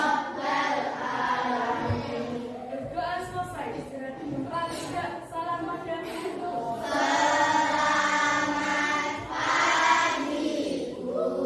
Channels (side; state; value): both; identical; correlation 1.00